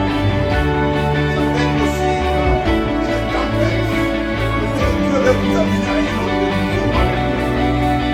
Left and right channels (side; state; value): both; identical; correlation 1.00